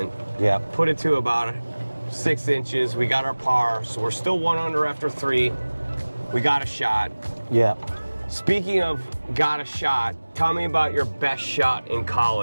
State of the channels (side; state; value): both; inverted; correlation -1.00